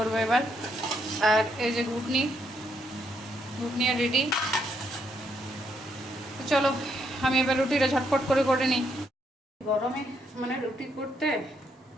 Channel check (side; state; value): both; normal; correlation 0.75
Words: এবার। আর এই যে ঘুগনি রেডি, চলো আমি এবার রুটিটা ঝটপট করে নিই। গরমে মানে রুটি করতে,